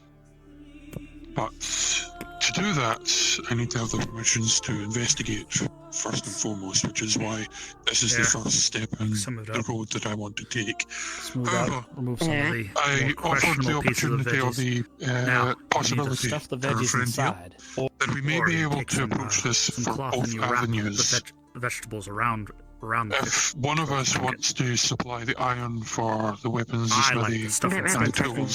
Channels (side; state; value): both; identical; correlation 1.00